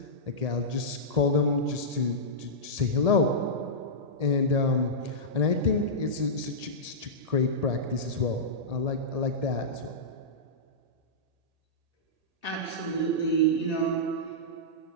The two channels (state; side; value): late; left; 1.8 ms